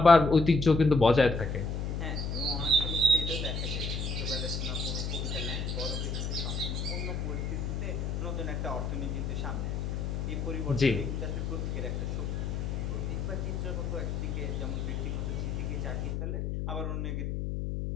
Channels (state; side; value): noise; left; hum, 2 dB below the sound